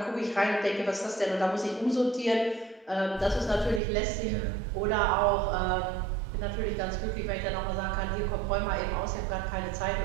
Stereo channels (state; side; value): drops out; left; at 3.8 s